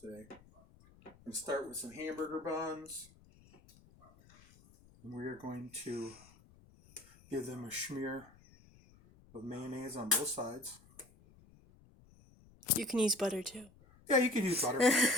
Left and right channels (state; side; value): noise; left; rumble, 26 dB below the sound